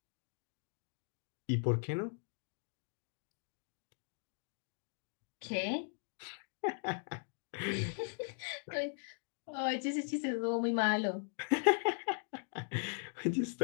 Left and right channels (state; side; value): silent; right; digital silence